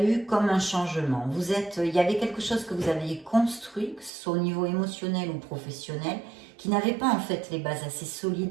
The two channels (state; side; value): drops out; left; at 4.1 s